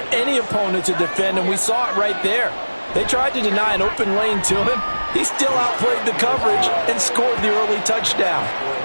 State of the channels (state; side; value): inverted; both; correlation -1.00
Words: any opponent to defend, and we saw it right there. They tried to deny an open lane to him. He still outplayed the coverage and scored the early touchdown.